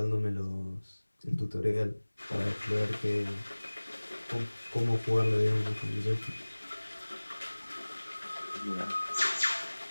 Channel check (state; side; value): inverted; both; correlation -1.00